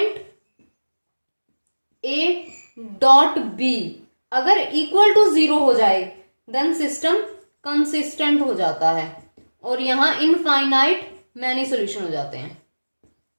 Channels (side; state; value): both; inverted; correlation -1.00